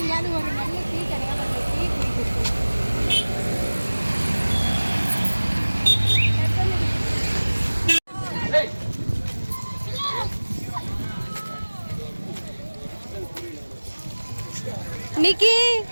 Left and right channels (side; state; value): both; inverted; correlation -1.00